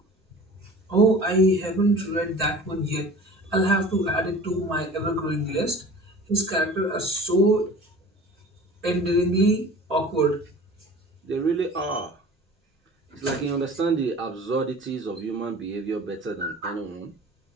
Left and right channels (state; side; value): normal; both; correlation 0.42